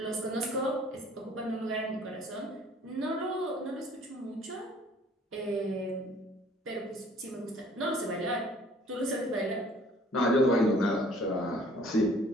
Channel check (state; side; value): normal; both; correlation 0.55